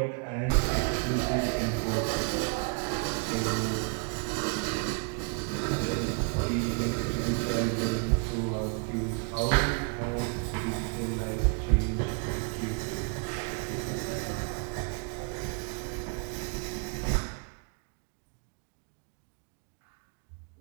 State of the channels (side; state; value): left; quieter; 36.9 dB